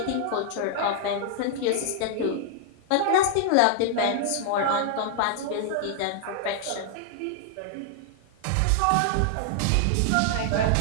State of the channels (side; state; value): both; different; correlation -0.01